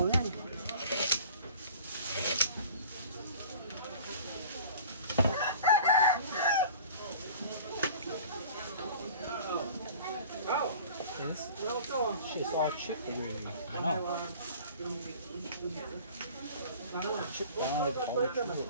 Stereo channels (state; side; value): inverted; both; correlation -0.44